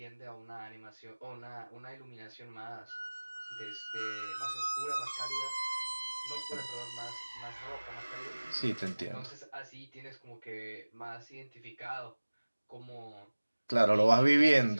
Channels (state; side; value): inverted; both; correlation -1.00